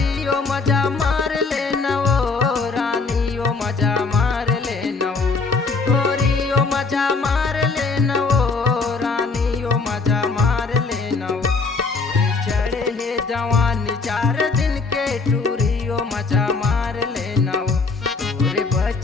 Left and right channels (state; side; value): quieter; right; 4.2 dB